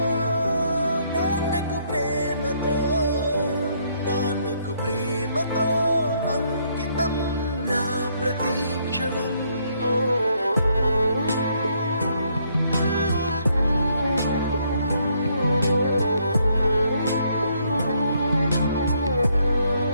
నాన్నకు ప్రేమతో నాన్నకు ప్రేమతో అంకితం నా ప్రతీక్షణం.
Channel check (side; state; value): both; inverted; correlation -0.71